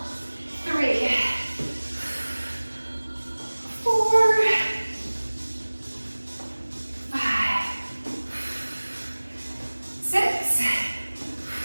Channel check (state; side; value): inverted; both; correlation -1.00